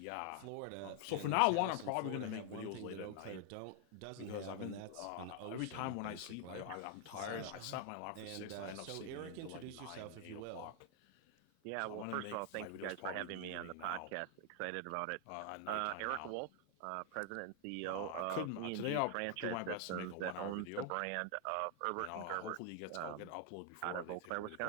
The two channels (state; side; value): different; both; correlation 0.00